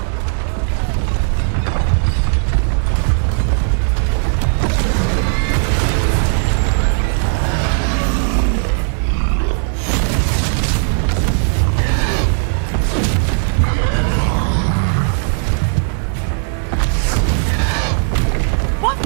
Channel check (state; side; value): silent; left; digital silence